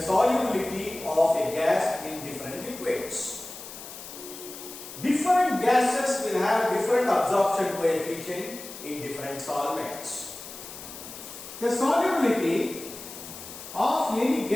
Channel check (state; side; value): noise; left; hiss, 13 dB below the sound